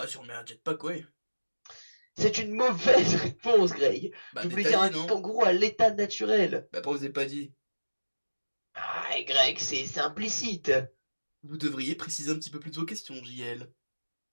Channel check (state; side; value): inverted; both; correlation -1.00